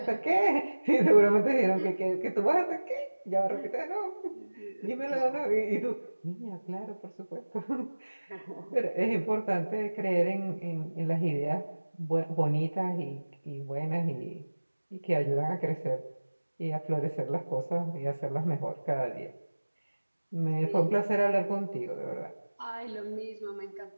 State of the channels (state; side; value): inverted; both; correlation -1.00